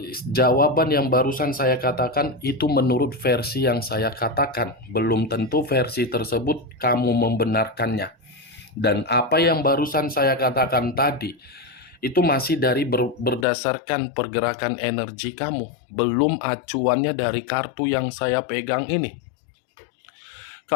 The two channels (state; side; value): drops out; right; at 13.5 s